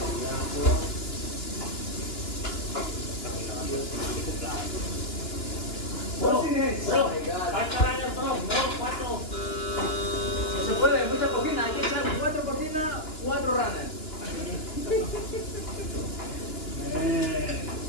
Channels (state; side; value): late; right; 2.9 ms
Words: Bro, Bro, kahit marami ng bro, 4. Se puede, mucha cocina, hay que echar 4 cocinas, 4 runners. Eh.